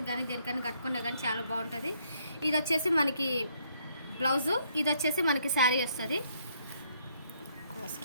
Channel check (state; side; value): inverted; both; correlation -0.70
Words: కానీ దేనికైనా కట్టుకున్నా కానీ చాలా బాగుంటుంది. ఇది వచ్చేసి మనకి బ్లౌజు, ఇది వచ్చేసి మనకి శారీ వస్తుంది.